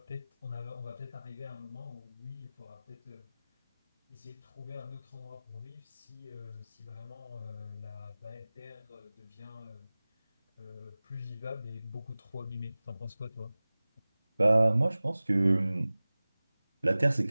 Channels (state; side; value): inverted; both; correlation -0.98